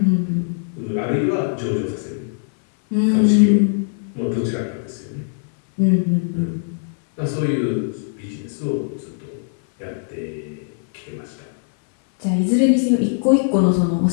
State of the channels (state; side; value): silent; right; 61 dB below the other